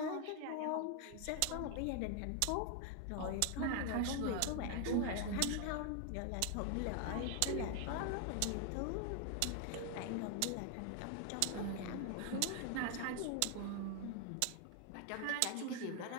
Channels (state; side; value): different; both; correlation 0.00